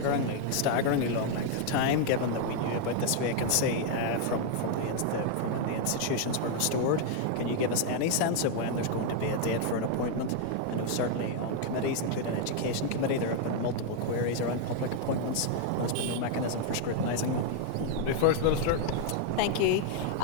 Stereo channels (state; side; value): different; both; correlation 0.00